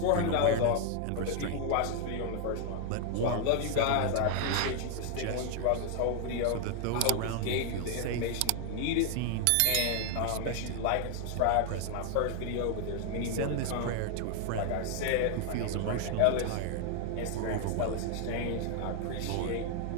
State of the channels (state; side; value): different; both; correlation 0.00